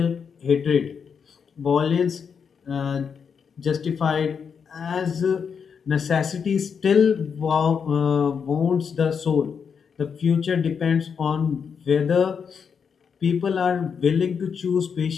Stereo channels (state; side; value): quieter; right; 6.5 dB